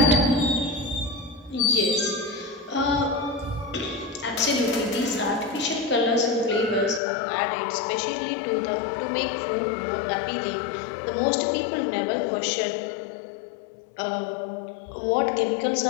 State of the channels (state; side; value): drops out; right; at 7.0 s